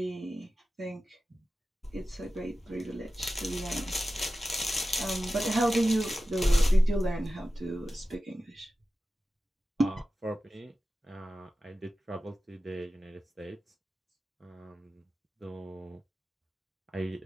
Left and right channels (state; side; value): normal; both; correlation 0.94